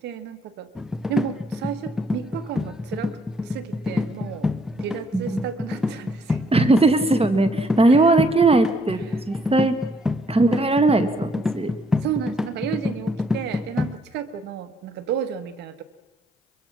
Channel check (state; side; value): normal; both; correlation 0.68